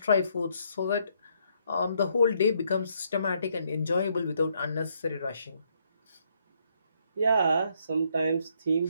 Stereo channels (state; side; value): inverted; both; correlation -0.72